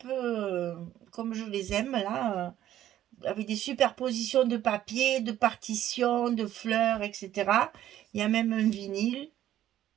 comme je les aime, là, avec des superpositions de papier, de partitions, de fleurs, etc. Il y a même un vinyle,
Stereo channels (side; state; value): left; quieter; 12.4 dB